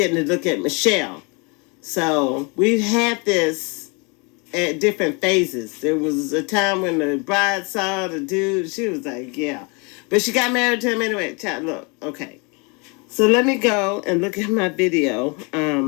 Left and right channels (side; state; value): right; quieter; 31.2 dB